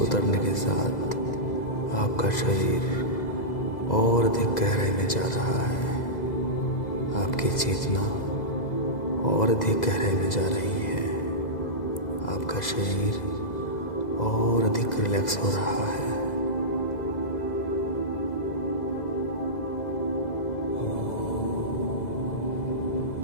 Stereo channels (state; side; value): late; right; 2.0 ms